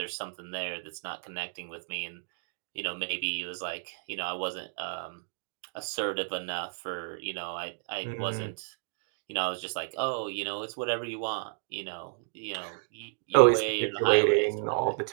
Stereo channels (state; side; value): silent; left; digital silence